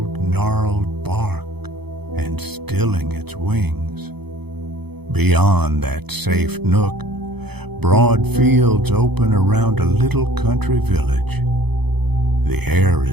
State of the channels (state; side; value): late; left; 0.98 ms